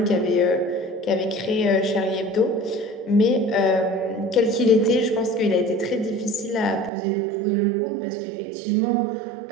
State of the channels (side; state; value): left; drops out; at 6.9 s